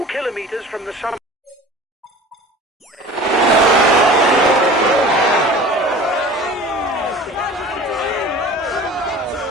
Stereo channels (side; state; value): both; normal; correlation 0.41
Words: kilometers from the summit.